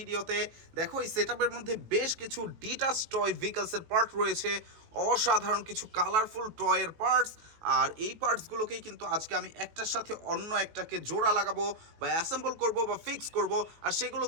দেখো, এই সেটআপের মধ্যে বেশ কিছু ডিটাচ টয় ভেহিকলসের পার্ট রয়েছে, অসাধারণ কিছু কালারফুল টয়ের পার্টস। আর এই পার্টসগুলোকেই কিন্তু আজকে আমি একটার সাথে অন্য একটাকে জোড়া লাগাবো বা অ্যাসেম্বল করব বা ফিক্স করব, আর সেগুলো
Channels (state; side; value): late; left; 19 ms